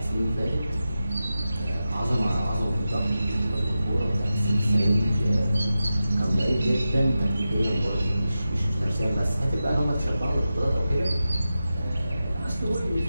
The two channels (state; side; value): inverted; both; correlation -0.92